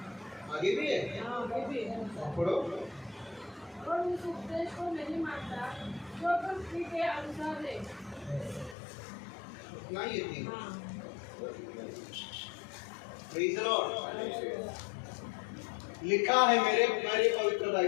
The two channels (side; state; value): right; drops out; at 8.8 s